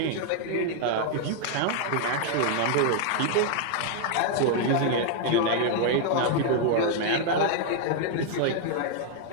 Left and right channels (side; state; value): both; different; correlation 0.00